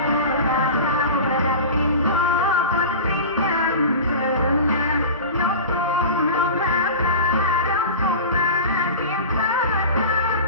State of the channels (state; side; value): inverted; both; correlation -0.32